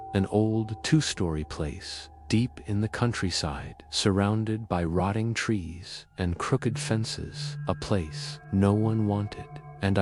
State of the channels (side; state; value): both; identical; correlation 1.00